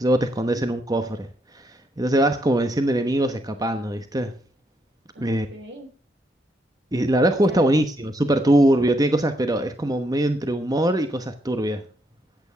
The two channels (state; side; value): normal; both; correlation 0.76